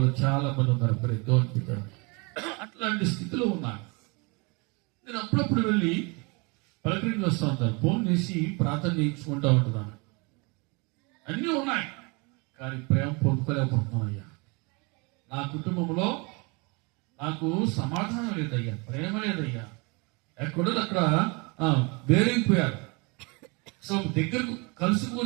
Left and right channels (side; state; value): left; quieter; 29.5 dB